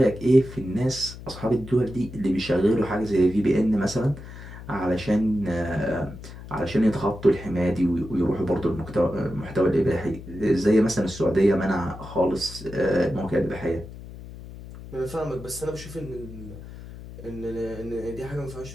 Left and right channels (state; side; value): noise; left; hum, 14 dB below the sound